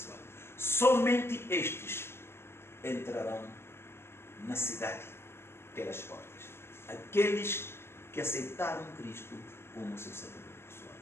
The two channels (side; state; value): right; late; 0.12 ms